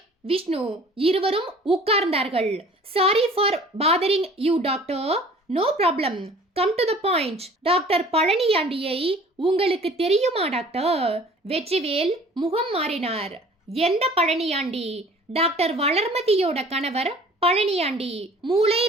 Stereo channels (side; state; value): both; normal; correlation 0.49